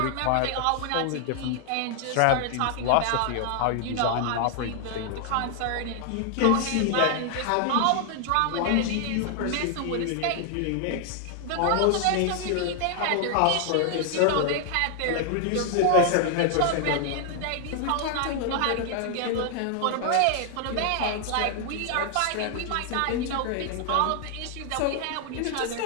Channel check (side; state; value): both; different; correlation 0.00